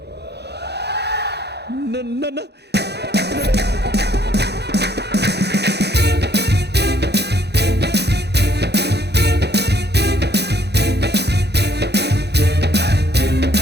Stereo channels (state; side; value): late; left; 0.48 ms